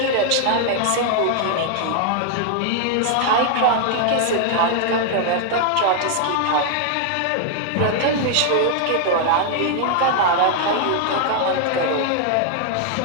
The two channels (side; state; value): both; different; correlation 0.00